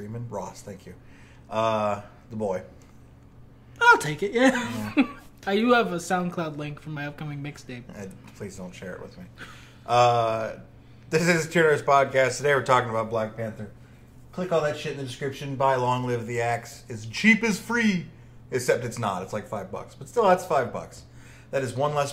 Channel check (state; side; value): identical; both; correlation 1.00